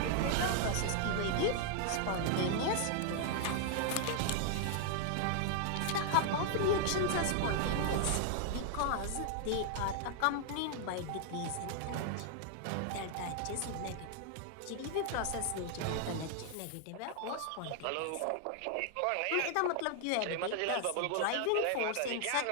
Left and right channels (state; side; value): different; both; correlation 0.00